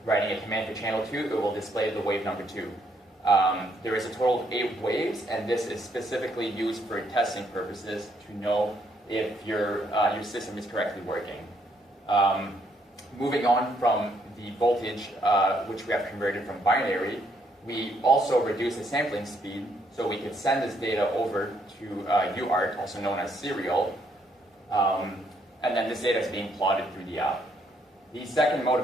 writing a command for channel 2, it will display the wave number 2. There is a total of 8 waves, and this is specifically used for testing purposes to know if your system is correctly working. Moving on from the voltage, which we have converted from binary, we also reduce the sampling speed, so we could send this data over to UART, also known as serial, and then this data is being plotted through the app. The second mode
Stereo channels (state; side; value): normal; both; correlation 0.71